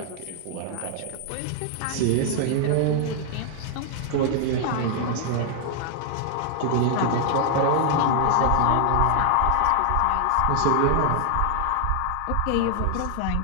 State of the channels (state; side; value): different; both; correlation 0.00